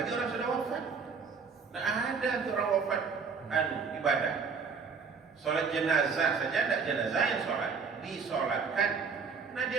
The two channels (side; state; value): left; quieter; 5.4 dB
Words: orang sudah wafat, tidak ada untuk orang wafat ibadah. Sholat jenazah saja tidak jenazah yang sholat, disolatkan. Nah, dia